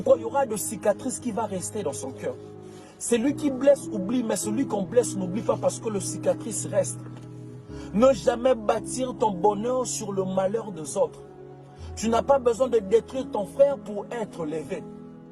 Il y aura de cicatrices qui vont rester dans son cœur. Celui qui blesse oublie, mais celui qu'on blesse n'oublie pas parce que le cicatrice reste. Ne jamais bâtir ton bonheur sur le malheur des autres. Tu n'as pas besoin de détruire ton frère pour être levé.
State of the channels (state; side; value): identical; both; correlation 1.00